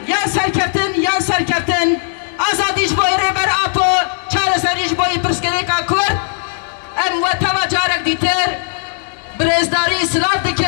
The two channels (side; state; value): right; silent; digital silence